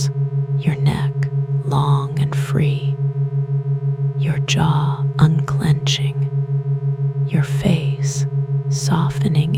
your neck long and free, your jaw unclenching, your face softening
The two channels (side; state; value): both; identical; correlation 1.00